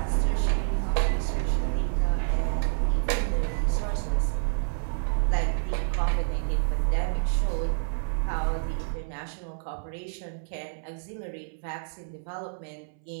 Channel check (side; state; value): left; silent; 59 dB below the other